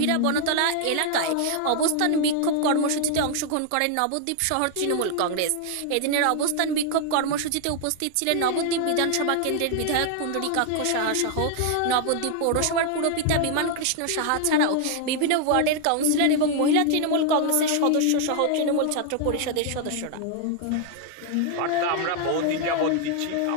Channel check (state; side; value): different; both; correlation 0.00